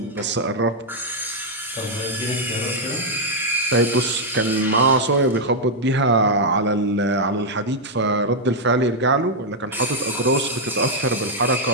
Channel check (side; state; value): both; normal; correlation -0.02